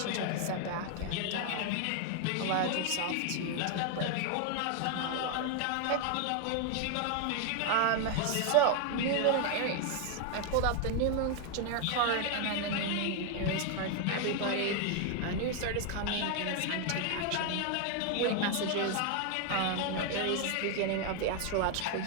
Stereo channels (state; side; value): different; both; correlation 0.01